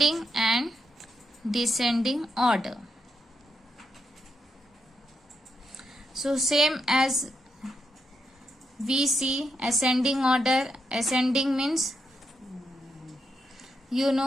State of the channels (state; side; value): normal; both; correlation 0.82